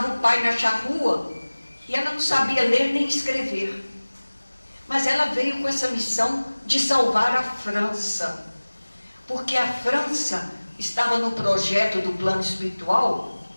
o pai na charrua, e ela não sabia ler nem escrever. Mas ela veio com essa missão de salvar a França, porque a França estava no projeto do plano espiritual,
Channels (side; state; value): both; inverted; correlation -1.00